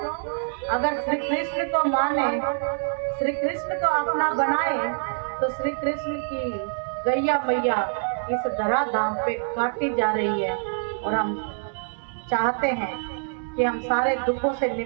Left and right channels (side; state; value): left; silent; digital silence